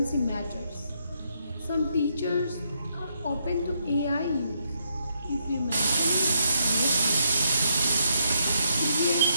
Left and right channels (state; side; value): inverted; both; correlation -0.76